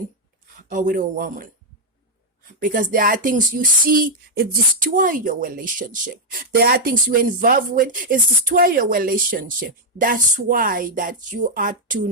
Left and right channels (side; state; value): both; normal; correlation -0.02